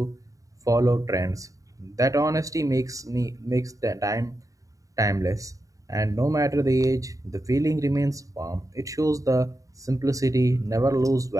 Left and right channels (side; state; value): left; late; 0.16 ms